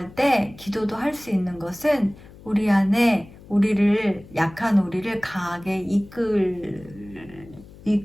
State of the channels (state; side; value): noise; left; hum, 21 dB below the sound